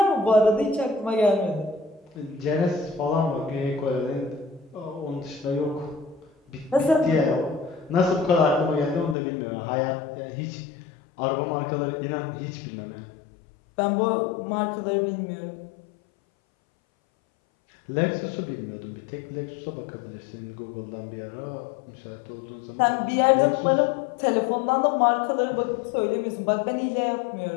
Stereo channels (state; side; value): drops out; right; at 9.2 s